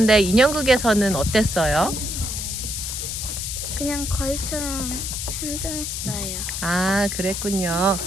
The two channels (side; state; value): left; noise; hiss, 4 dB below the sound